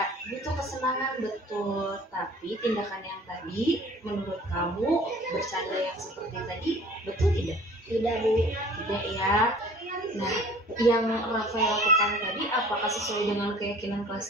butuh kesenangan betul, tapi tindakan yang tadi menurut kamu bercanda yang seperti tadi betul tidak? Tidak, Bu. Tidak ya. Nah, yang Rafai lakukan tadi apakah sesuai dengan keyakinan kelas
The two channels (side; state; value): both; normal; correlation 0.49